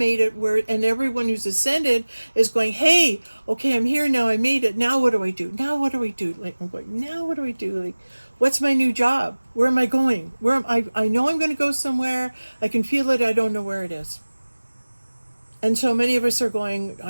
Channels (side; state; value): both; inverted; correlation -1.00